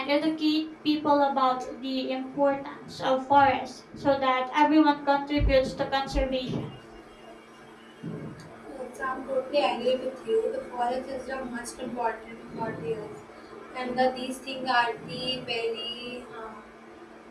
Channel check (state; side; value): identical; both; correlation 1.00